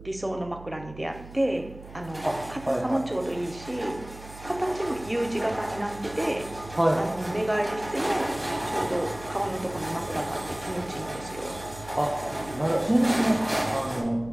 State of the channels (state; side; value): noise; right; hum, 16 dB below the sound